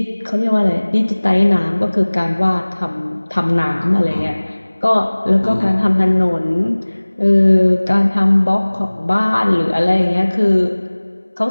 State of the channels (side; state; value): both; inverted; correlation -1.00